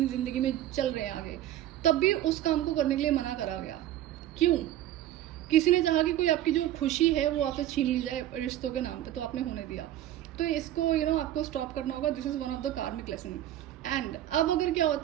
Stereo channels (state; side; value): quieter; left; 12.8 dB